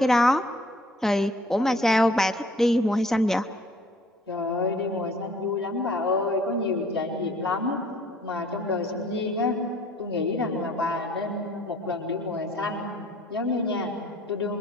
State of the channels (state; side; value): normal; both; correlation 0.55